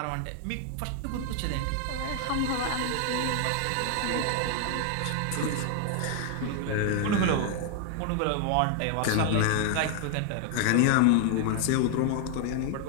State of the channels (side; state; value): both; different; correlation 0.00